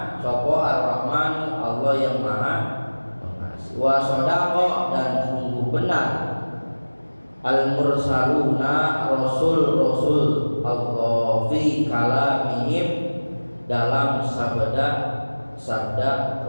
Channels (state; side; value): inverted; both; correlation -1.00